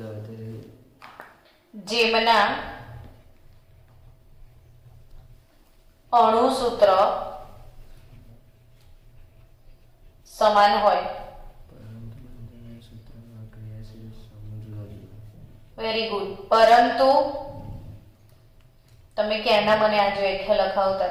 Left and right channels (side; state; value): both; identical; correlation 1.00